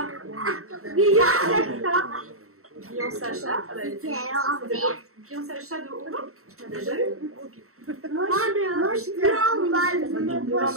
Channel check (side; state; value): left; late; 0.63 ms